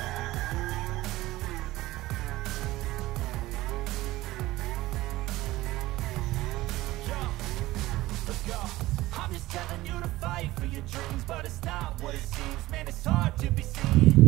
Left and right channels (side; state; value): left; quieter; 17.6 dB